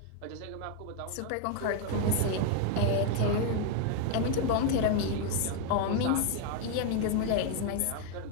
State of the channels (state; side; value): different; both; correlation 0.01